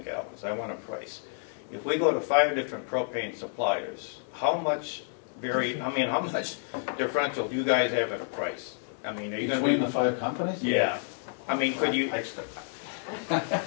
gallons. I want a price. If we go to 5 different propane suppliers, how much differential do you guys have in a price? I mean, are you going to Between the 5 companies? Yeah. I mean, could you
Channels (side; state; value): right; silent; 58 dB below the other